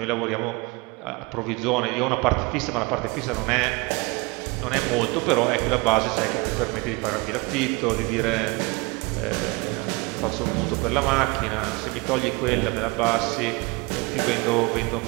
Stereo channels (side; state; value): left; quieter; 26.7 dB